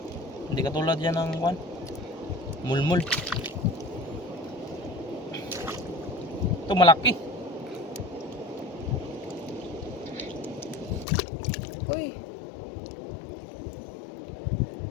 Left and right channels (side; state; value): right; drops out; at 11.1 s